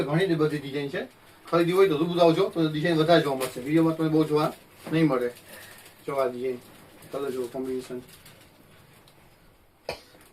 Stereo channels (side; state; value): both; identical; correlation 1.00